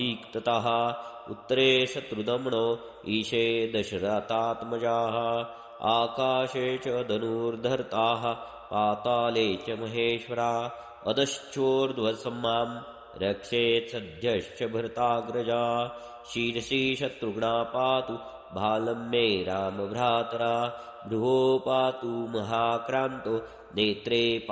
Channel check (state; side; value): identical; both; correlation 1.00